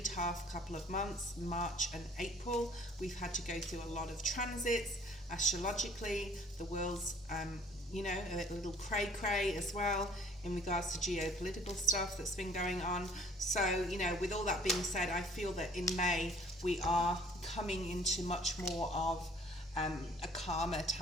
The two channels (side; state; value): both; normal; correlation 0.56